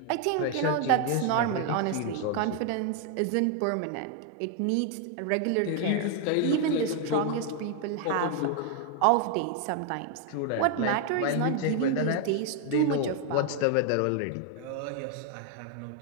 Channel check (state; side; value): different; both; correlation 0.00